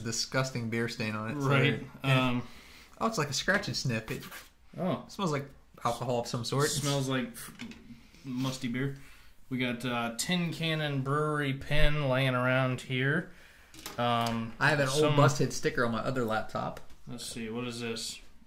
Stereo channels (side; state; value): both; identical; correlation 1.00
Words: beer stain on it. So right. it's like a scratch and sniff. It Oh, smells like alcohol of some sort. smells like musty beer. We got Tin Cannon Brewery pen laying around here. I have an old busted sticker on my other laptop. Let's see, what is this?